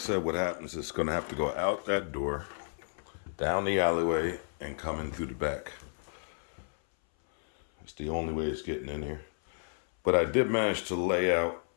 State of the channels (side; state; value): right; silent; 57 dB below the other